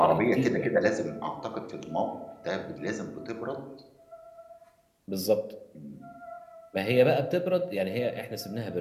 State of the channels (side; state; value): both; identical; correlation 1.00